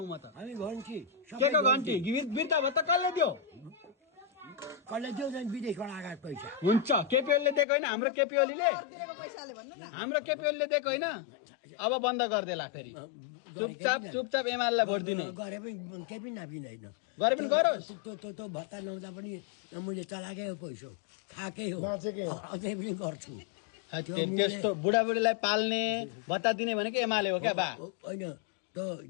म त हामी घन्टी के को घन्टी बिर्ता भत्ता कसले दियो कसले दियो झन् विदेशबाट आएको पैसा हुन्छ केपी ओलीले दिएको होइन हाम्रो केपी ओलीले हाम्रो केपी ओलीले दिएको होइन अब बन्द गरिदेला फेरि चुपचाप एमालेलाई भोट दिनु गरे पनि केही पनि नापिँदैन गरे पनि गरोस् त्यो भत्ता नहुँदा पनि मैले चलाएकै हो पैसा खाएकै हो अझै पनि गर्छु त्यस्तो बुढाबुढीलाई पाल्ने भत्ता दिने भनेको एमाले हो क्या बा होइन त्यो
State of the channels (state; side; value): drops out; right; at 7.7 s